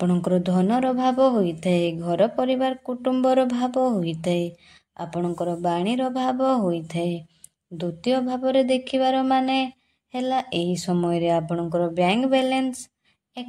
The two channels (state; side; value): identical; both; correlation 1.00